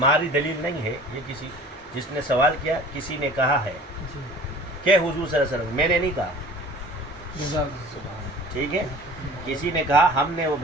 دلیل نہیں ہے. یہ کسی جس نے سوال کیا کسی نے کہا ہے کہ حضور صلی اللہ علیہ وسلم، میں نے نہیں کہا. ٹھیک ہے، کسی نے کہا، ہم نے وہ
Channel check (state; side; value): normal; both; correlation 0.44